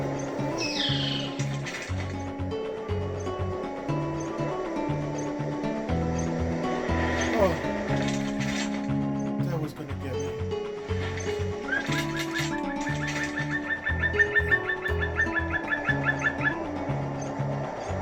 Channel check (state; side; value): identical; both; correlation 1.00